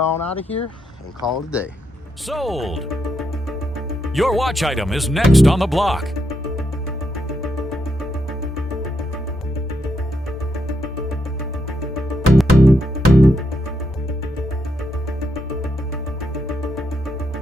out of here and call it a day. Sold! Your watch item is next on the block.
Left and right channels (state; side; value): normal; both; correlation 0.81